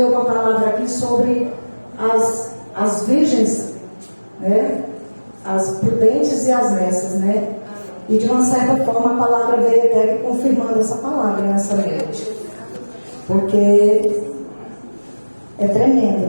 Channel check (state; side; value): inverted; both; correlation -1.00